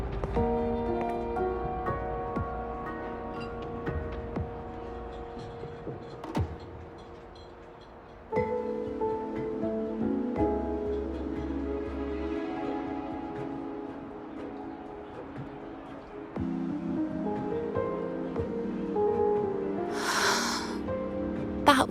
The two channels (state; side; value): identical; both; correlation 1.00